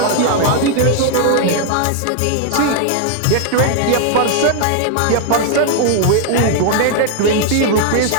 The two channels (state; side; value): different; both; correlation 0.00